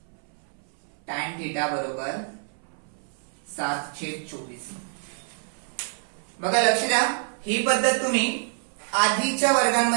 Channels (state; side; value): silent; left; 60 dB below the other